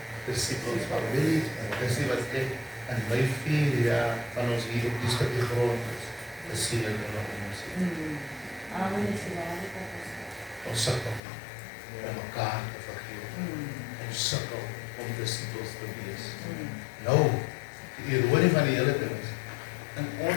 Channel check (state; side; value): drops out; right; at 11.2 s